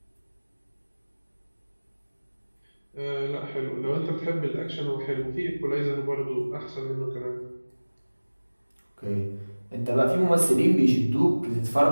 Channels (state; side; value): inverted; both; correlation -1.00